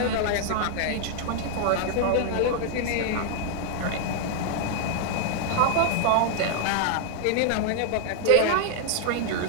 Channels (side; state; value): both; different; correlation 0.00